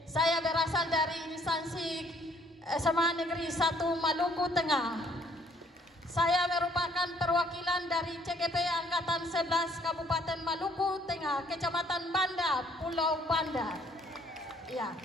Saya berasal dari instansi SMA Negeri 1 Maluku Tengah. Saya merupakan perwakilan dari CGP Angkatan 11 Kabupaten Maluku Tengah, Kecamatan Banda, Pulau Banda. Ya,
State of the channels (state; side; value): normal; both; correlation 0.63